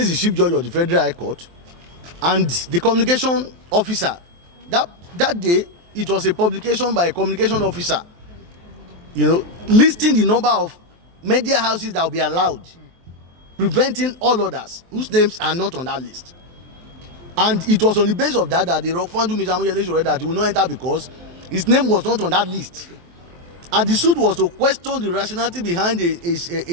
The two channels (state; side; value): late; left; 23 ms